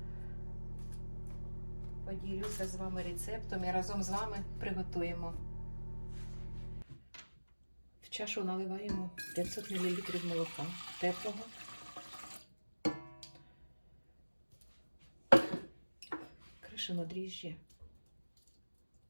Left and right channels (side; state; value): both; inverted; correlation -1.00